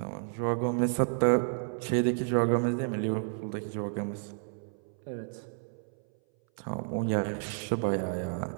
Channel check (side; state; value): left; silent; 57 dB below the other